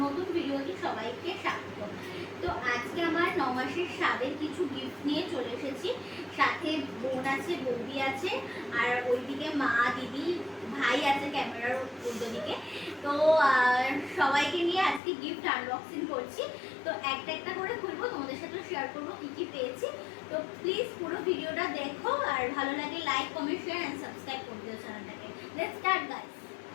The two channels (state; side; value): drops out; right; at 15.0 s